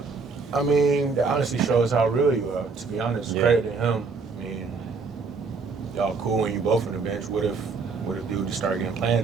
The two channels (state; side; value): quieter; left; 4.7 dB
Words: I mean, that honestly shows how real you are, to be honest. Yeah. Credit to him. I mean, y'all cool when you both on the bench. What if dude just started getting playing